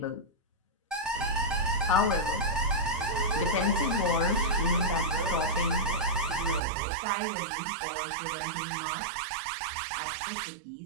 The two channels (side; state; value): left; drops out; at 6.6 s